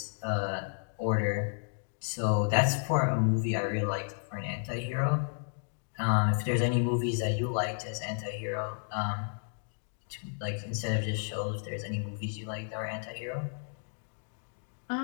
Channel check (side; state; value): right; silent; digital silence